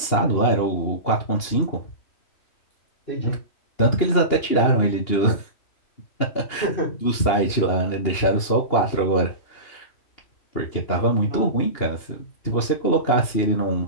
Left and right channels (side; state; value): right; late; 2.8 ms